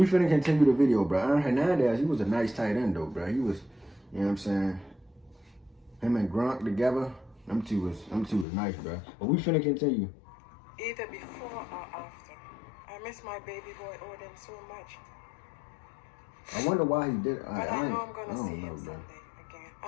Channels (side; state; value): right; drops out; at 8.5 s